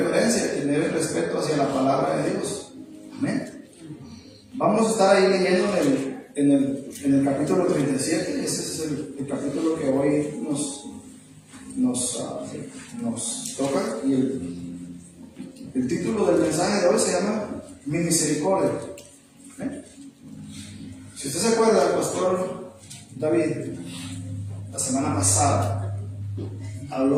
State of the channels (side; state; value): both; identical; correlation 1.00